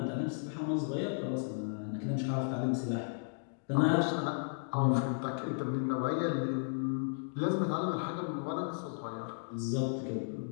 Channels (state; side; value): silent; right; digital silence